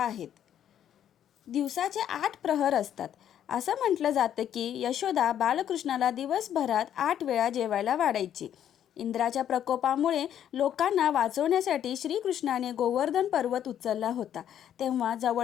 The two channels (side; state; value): right; quieter; 10.1 dB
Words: दिवसाचे 8 प्रहर असतात. असं म्हटलं जातं की यशोदा बालकृष्णाला दिवसभरात 8 वेळा जेवायला वाढायची. इंद्राच्या प्रकोपामुळे लोकांना वाचवण्यासाठी श्रीकृष्णाने गोवर्धन पर्वत उचलला होता. तेव्हा